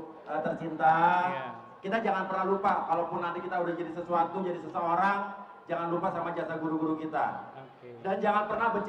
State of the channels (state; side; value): identical; both; correlation 1.00